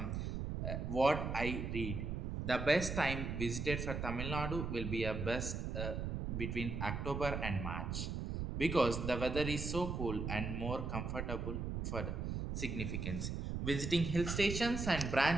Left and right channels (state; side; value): noise; right; rumble, 3 dB below the sound